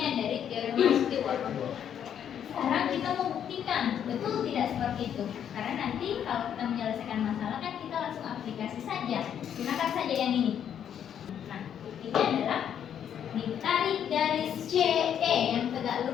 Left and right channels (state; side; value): quieter; right; 9.1 dB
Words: dari teorema Stewart. Sekarang kita mau buktikan betul tidak seperti itu. Karena nanti kalau kita menyelesaikan masalah kan kita langsung aplikasi saja. Gunakan saja yang ini. Nah, buktinya adalah ditarik garis CE yang tegak